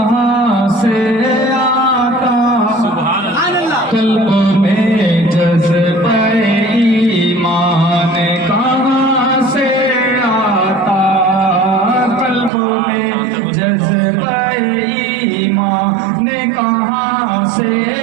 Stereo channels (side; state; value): left; drops out; at 12.5 s